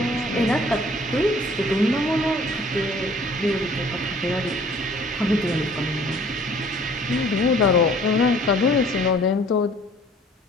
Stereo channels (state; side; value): normal; both; correlation 0.53